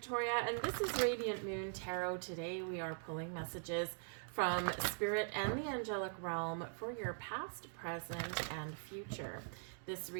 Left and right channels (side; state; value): left; silent; digital silence